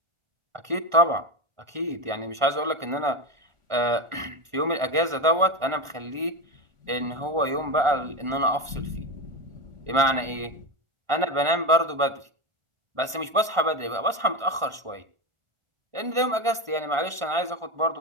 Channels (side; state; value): left; late; 1.4 ms